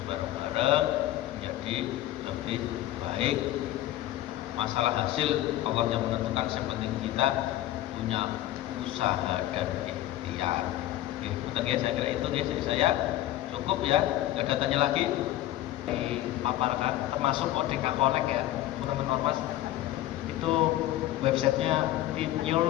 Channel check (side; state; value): right; quieter; 14.5 dB